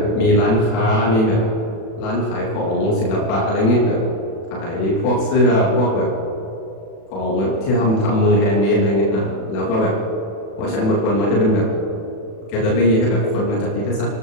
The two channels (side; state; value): right; late; 36 ms